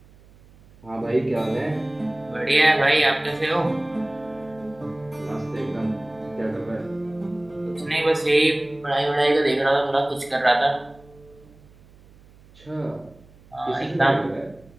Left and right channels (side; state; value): right; noise; hum, 26 dB below the sound